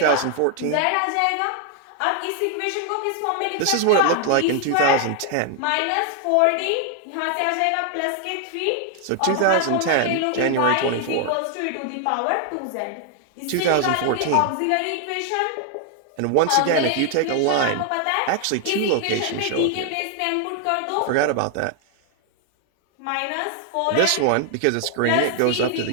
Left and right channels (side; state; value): both; different; correlation 0.00